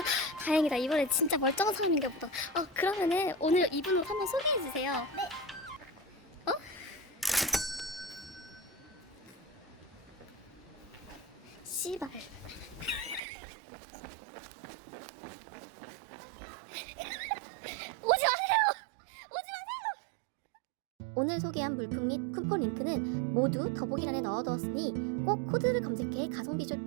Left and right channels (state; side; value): drops out; left; at 13.2 s